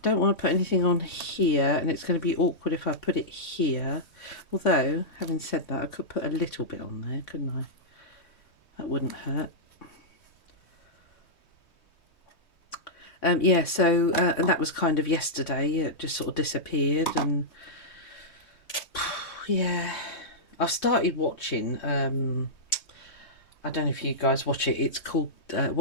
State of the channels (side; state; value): right; late; 3.2 ms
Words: don't want to put anything on here, and it's going to be awkward if I put it here. Although, having said that, I could put a little bit on there, couldn't I? That wouldn't hurt. Yeah, so, and that was kind of yesterday. It just sort of disappeared, and yeah, I've started watching, I don't know if you guys watch it. It's called,